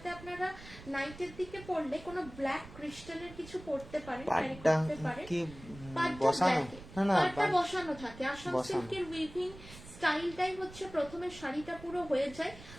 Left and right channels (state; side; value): noise; right; rumble, 17 dB below the sound